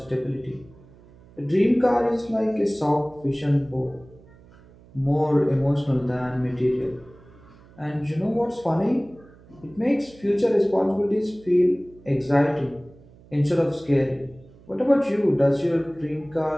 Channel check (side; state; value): right; noise; hum, 25 dB below the sound